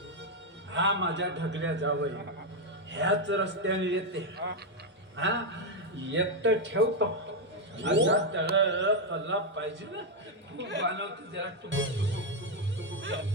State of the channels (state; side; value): normal; both; correlation 0.01